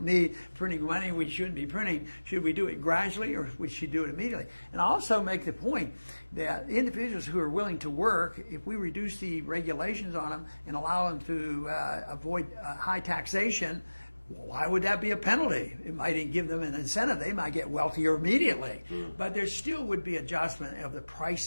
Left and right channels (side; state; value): both; inverted; correlation -1.00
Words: need, printing money we shouldn't be printing, should we do it gradually or we should do it immediately? And I also make the point that individuals who are willing to work, if we reduce the regulations on them and allow them to avoid high taxation, why would that be a penalty? It might give them an incentive. They might get wealthier immediately. But there still would be adjustment of the